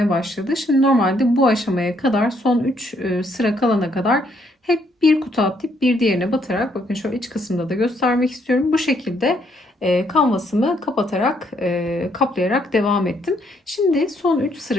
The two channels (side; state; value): both; normal; correlation 0.71